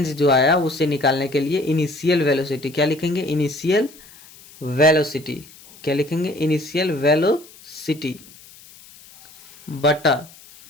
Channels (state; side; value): noise; left; hiss, 22 dB below the sound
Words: जो आया उससे निकालने के लिए इनिशियल वेलोसिटी क्या लिखेंगे? Initial velocity. क्या लिखेंगे? इनिशियल वेलोसिटी बटा,